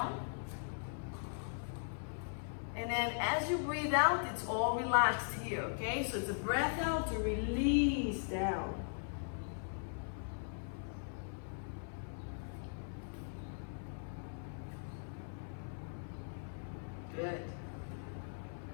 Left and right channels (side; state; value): right; silent; 51 dB below the other